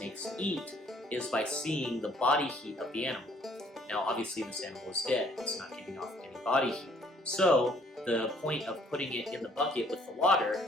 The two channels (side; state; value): both; normal; correlation 0.61